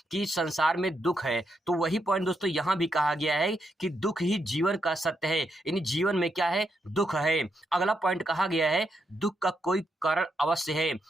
कि संसार में दुख है, तो वही पॉइंट दोस्तों यहाँ भी कहा गया है कि दुख ही जीवन का सत्य है, यानी जीवन में क्या है? दुख है। अगला पॉइंट कहा गया है दुख का कोई कारण अवश्य है,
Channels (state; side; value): normal; both; correlation 0.81